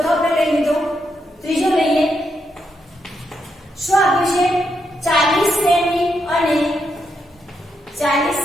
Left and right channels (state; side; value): normal; both; correlation 0.81